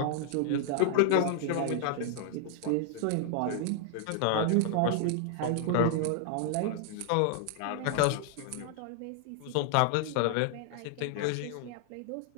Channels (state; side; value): different; both; correlation -0.01